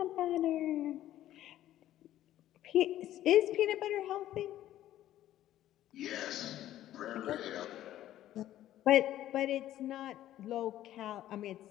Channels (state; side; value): quieter; right; 13.1 dB